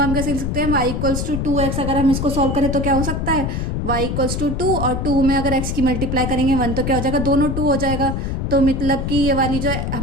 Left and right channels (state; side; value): noise; left; rumble, 2 dB below the sound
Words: हम कैसे लिख सकते हैं, y इक्वल्स टू 2x। अगर हम इसको सॉल्व करें तो क्या हो सकता है, y इक्वल्स टू 2 और 2 में अगर x की मल्टीप्लाई करेंगे 1, तो क्या हो जाएगा, दोनों 2 हो जाएगा। तो मतलब कि ये वाली जो